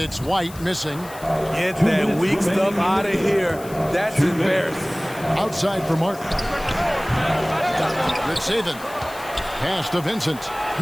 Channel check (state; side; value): noise; left; hiss, 18 dB below the sound